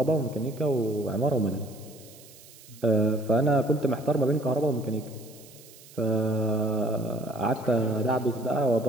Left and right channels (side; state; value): right; noise; hiss, 21 dB below the sound